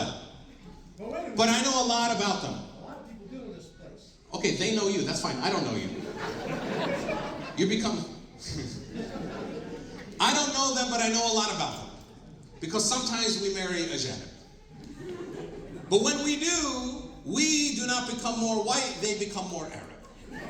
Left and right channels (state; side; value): identical; both; correlation 1.00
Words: but I know a lot about them. A lot of people do in this place. Okay, they know you. That's fine. I don't know you. You become... I don't know them, but I know a lot about them. Because sometimes we marry a janib. But when we do not become more white, they become more Arab.